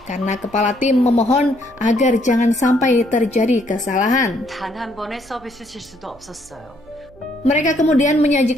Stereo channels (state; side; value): noise; right; hum, 26 dB below the sound